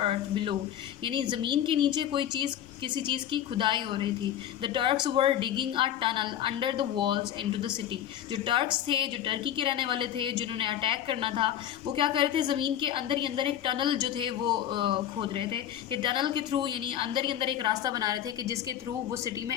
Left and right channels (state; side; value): quieter; right; 10.9 dB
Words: below. यानी ज़मीन के नीचे कोई चीज़ किसी चीज़ की खुदाई हो रही थी. The Turks were digging a tunnel under the walls into the city. जो टर्क्स थे, जो टर्की के रहने वाले थे, जिन्होंने अटैक करना था, वो क्या कर रहे थे, ज़मीन के अंदर ही अंदर एक टनल जो थे वो खोद रहे थे कि टनल के थ्रू यानी अंदर ही अंदर एक रास्ता बना रहे थे कि जिसके थ्रू वो सिटी में